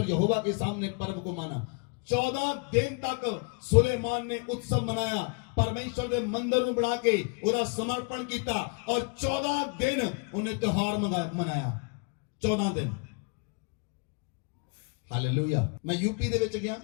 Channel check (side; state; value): right; quieter; 33.8 dB